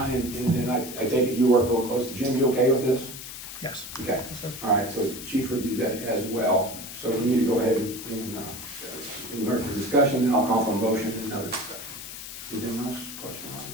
and I take it you work real close to Jim, you okay with this? Yes. Okay, Yes, sir. all right, so Chief reviewed that as well, so we need to go ahead and, for discussion, then I'll call for a motion and another discussion. Anything else, question on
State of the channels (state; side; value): noise; left; hiss, 10 dB below the sound